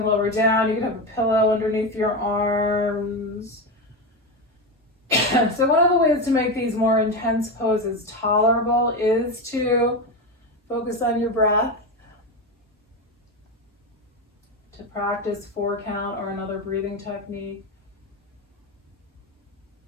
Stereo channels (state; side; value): normal; both; correlation 0.16